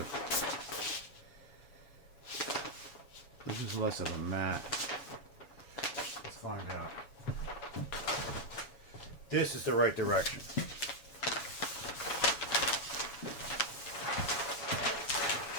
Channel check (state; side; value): late; right; 7.1 ms